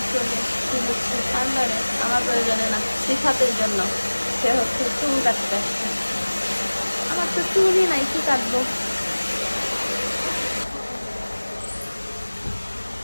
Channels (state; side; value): inverted; both; correlation -1.00